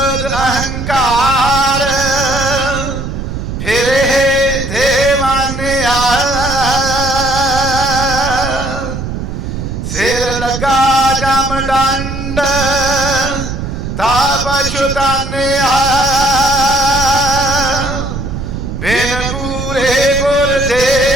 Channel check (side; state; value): right; noise; rumble, 5 dB below the sound